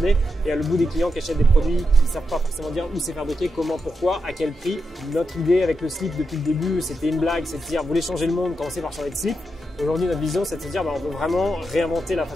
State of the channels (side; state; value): both; normal; correlation 0.86